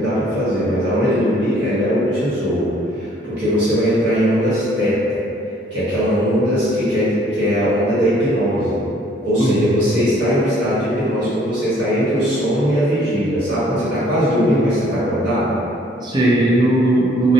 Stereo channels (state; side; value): normal; both; correlation 0.60